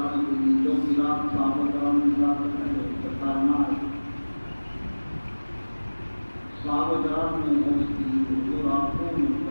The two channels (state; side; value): inverted; both; correlation -1.00